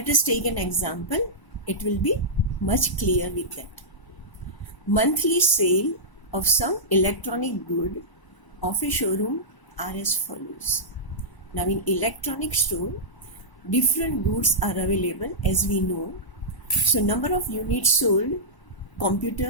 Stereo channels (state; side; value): late; right; 1.0 ms